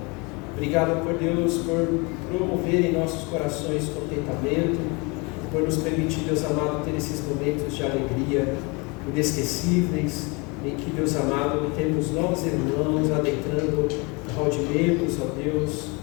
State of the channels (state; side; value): quieter; right; 28.6 dB